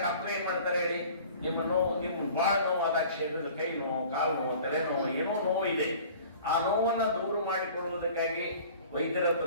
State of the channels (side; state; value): both; inverted; correlation -0.46